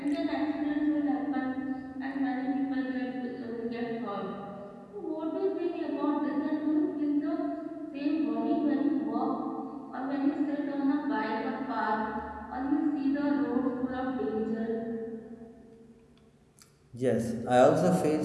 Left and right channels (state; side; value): identical; both; correlation 1.00